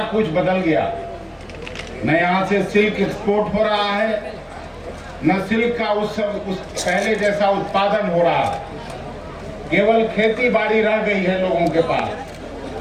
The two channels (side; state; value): both; identical; correlation 1.00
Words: कुछ बदल गया। न यहाँ से सिल्क एक्सपोर्ट हो रहा है, न सिल्क का उस पहले जैसा उत्पादन हो रहा है। केवल खेती बाड़ी रह गई है लोगों के पास,